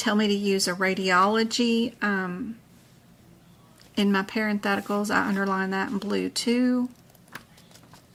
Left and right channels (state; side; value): identical; both; correlation 1.00